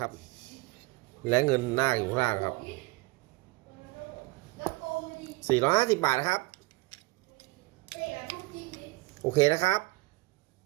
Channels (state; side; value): quieter; left; 23.5 dB